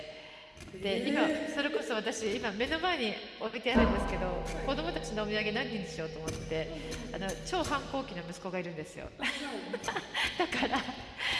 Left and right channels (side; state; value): both; identical; correlation 1.00